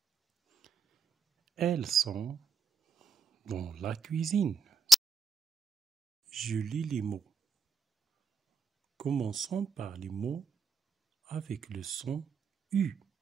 Elles sont dans la cuisine. Je lis les mots. Commençons par les mots avec le son U.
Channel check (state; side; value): quieter; left; 4.2 dB